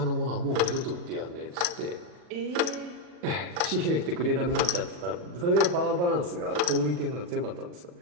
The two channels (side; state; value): left; late; 40 ms